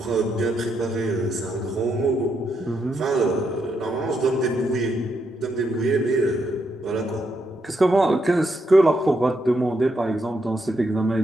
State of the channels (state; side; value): normal; both; correlation 0.79